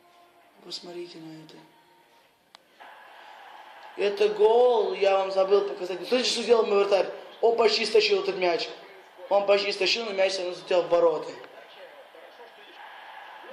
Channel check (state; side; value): identical; both; correlation 1.00